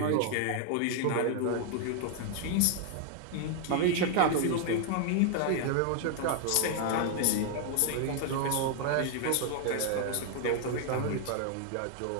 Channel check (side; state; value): both; different; correlation 0.00